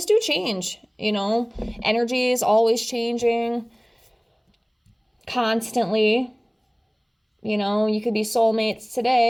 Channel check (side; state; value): both; identical; correlation 1.00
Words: do change, energy is always changing constantly. You could be soulmates